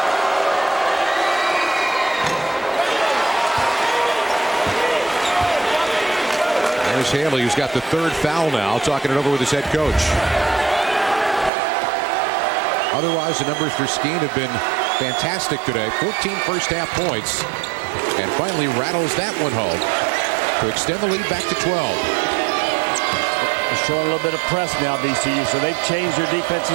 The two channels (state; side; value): drops out; left; at 11.5 s